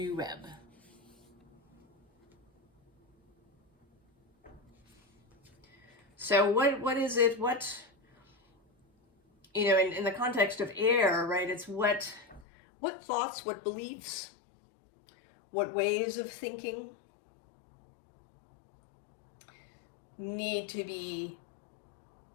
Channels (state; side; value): drops out; right; at 12.5 s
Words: web. So what is it, in the context of air, right, it's what thoughts, what beliefs, what ways of thinking need to be